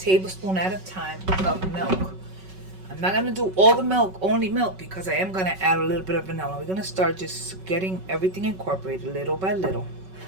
at a time of milk. I'm not gonna do all the milk, only milk, because I am gonna add a little bit of vanilla. We're gonna start just getting everything incorporated little by little.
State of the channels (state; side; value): late; left; 5.3 ms